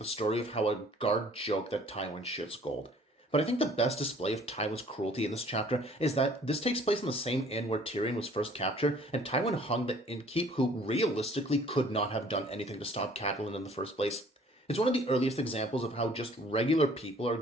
story of how a guard joked that Tywin shits gold. But I think the best display of Tywin's cruelty in this chapter is that this takes place in the same inn where Tyrion was first captured, and Tywin hung the innkeep who realistically could not have done anything to stop Catelyn in the first place. It's one of the earliest examples of how just regular people are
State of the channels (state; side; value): normal; both; correlation 0.55